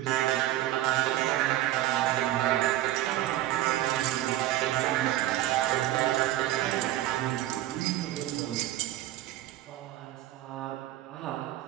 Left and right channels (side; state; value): left; quieter; 14.2 dB